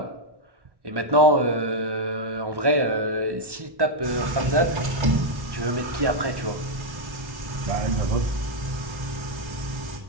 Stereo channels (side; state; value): left; late; 1.1 ms